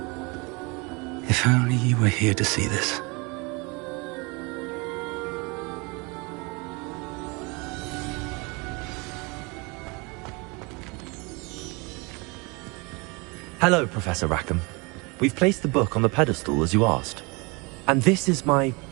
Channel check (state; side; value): quieter; left; 28.2 dB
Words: If only you were here to see this. Hello, Professor Rackham. We've placed the book on the pedestal as you asked. And this is my